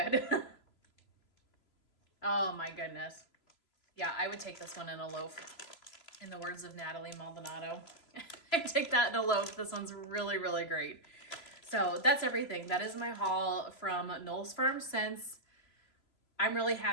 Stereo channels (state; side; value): late; right; 3.0 ms